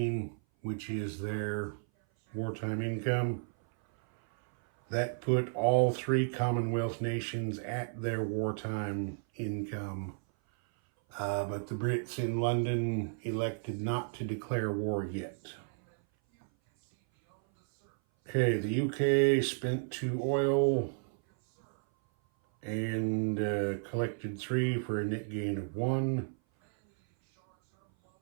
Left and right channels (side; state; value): left; silent; 56 dB below the other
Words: which is their wartime income. That put all 3 Commonwealth nations at their wartime income. But the Brits in London elected not to declare war yet. Okay, the UK spent 2 oil and collected 3 for a net gain of 1.